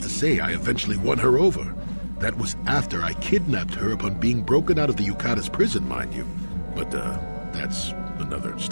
say, I eventually won her over. That was after I kidnapped her upon being broken out of the Yukatas prison, mind you. But, that's another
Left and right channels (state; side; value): inverted; both; correlation -1.00